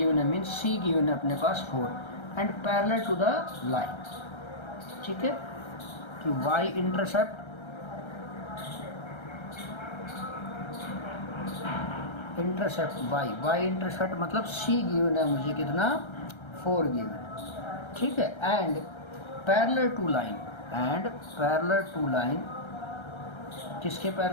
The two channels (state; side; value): late; right; 1.3 ms